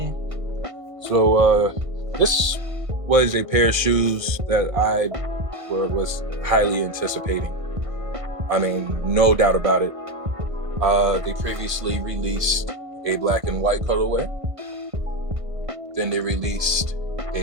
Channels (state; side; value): late; left; 1.5 ms